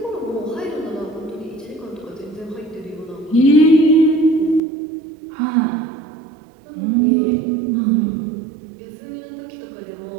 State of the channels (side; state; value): left; drops out; at 4.6 s